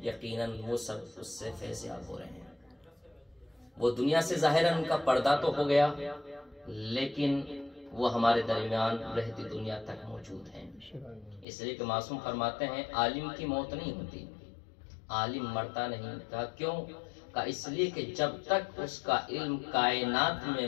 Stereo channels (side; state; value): right; drops out; at 11.5 s